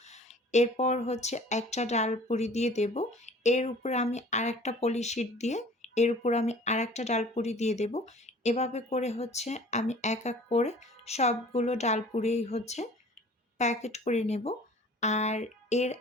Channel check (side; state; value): both; normal; correlation 0.48